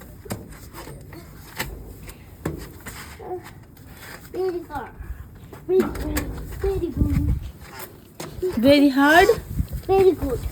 very hard very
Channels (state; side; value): identical; both; correlation 1.00